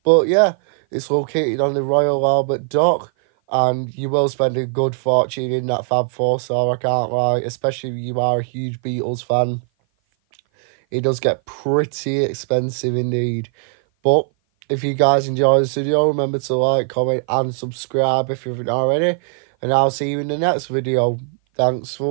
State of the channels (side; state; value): left; silent; 56 dB below the other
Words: But yeah, it's located on the Royal Albert Dock, and you will spend a good fortune in that Fab Four store, I can't lie, especially if you are a huge Beatles fan. it does get pretty expensive indeed. But if you guys enjoy this video, remember to like, comment and subscribe if you haven't already. And I'll see you in the next video. Thanks